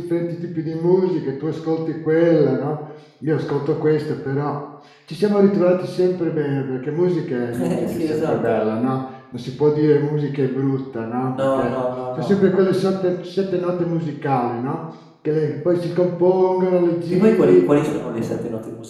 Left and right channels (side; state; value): both; identical; correlation 1.00